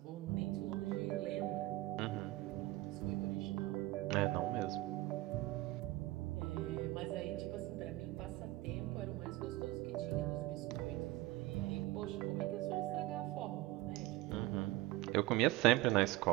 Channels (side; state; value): left; quieter; 18.2 dB